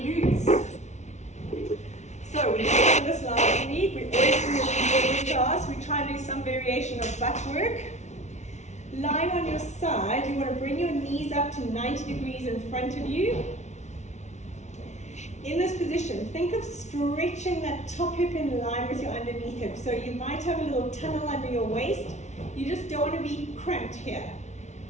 So we did this last week. We always do this in every class. We try and do some variation of butt work. Lying on your side, you want to bring your knees up to 90 degrees in front of you. In this position, think of stretching that top hip in line with your underneath hip. So you might have a little tunnel under your waist. You just don't want to be cramped here.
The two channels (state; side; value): late; right; 0.33 ms